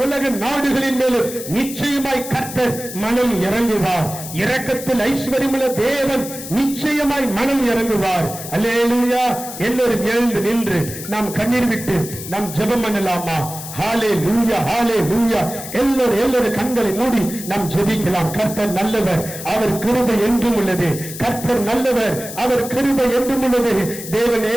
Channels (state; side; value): noise; left; hiss, 11 dB below the sound